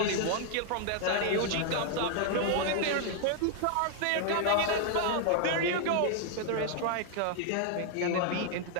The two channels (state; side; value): different; both; correlation 0.00